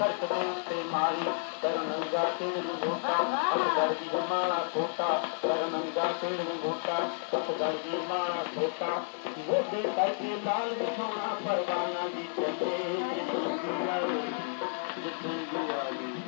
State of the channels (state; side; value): silent; right; digital silence